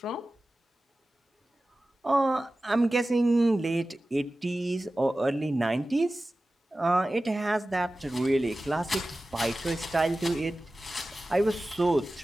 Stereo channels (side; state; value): both; normal; correlation 0.96